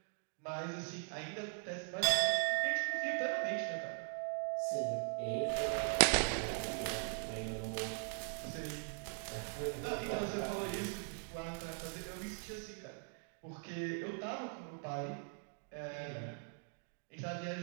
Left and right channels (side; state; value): left; silent; 51 dB below the other